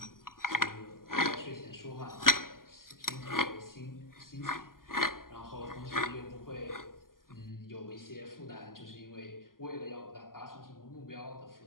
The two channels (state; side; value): late; right; 0.91 ms